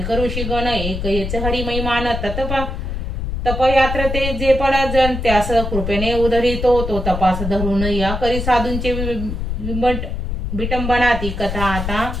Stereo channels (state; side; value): noise; left; rumble, 4 dB below the sound